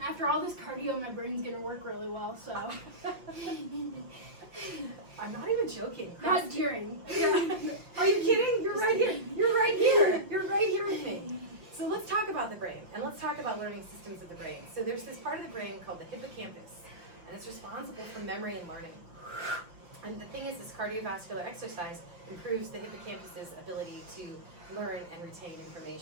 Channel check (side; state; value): left; late; 5.8 ms